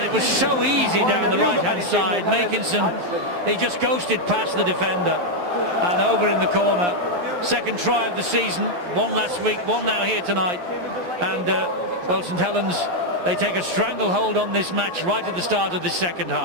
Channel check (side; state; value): left; late; 11 ms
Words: it was so easy down the right-hand side. Makinson, he just ghosted past the defender and over in the corner. Second try of the season, one last week, one now here tonight. And well, St Helens They take a stranglehold on this match right at the start of the second